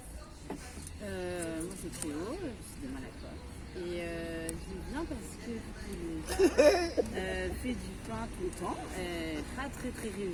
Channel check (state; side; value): identical; both; correlation 1.00